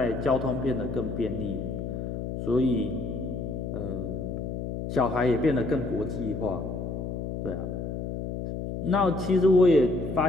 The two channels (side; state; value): left; noise; hum, 5 dB below the sound